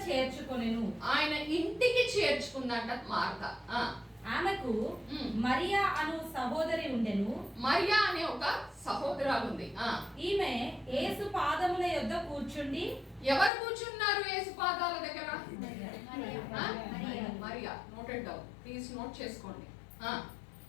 చేర్చుకొనెను. ఆయన ఇంటికి చేర్చుకుందంట మార్తా. ఆ, ఆమెకు ఉమ్. మరియా అను సహోదరి ఉండెను. మరియా అనే ఒక సహోదరాలు ఉంది. ఆ, ఈమె యేసు పాదముల యొద్ద కూర్చుండి ఎవరు కూర్చున్నారు యేసు పాదాల దగ్గర? ఆ? Mariya. Mariya. Noted down please, note చేసుకోండి. ఆ,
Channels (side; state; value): right; drops out; at 13.5 s